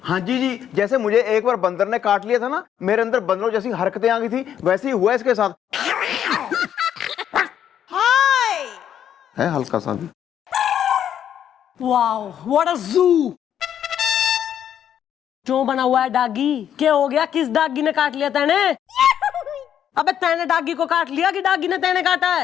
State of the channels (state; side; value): quieter; right; 9.7 dB